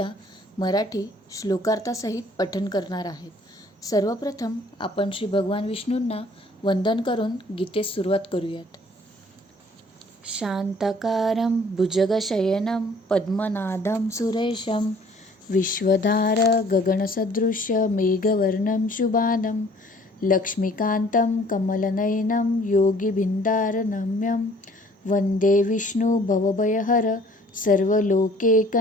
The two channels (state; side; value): normal; both; correlation 0.55